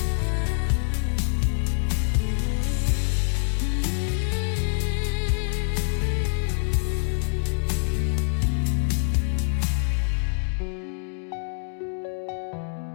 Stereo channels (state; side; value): silent; right; 61 dB below the other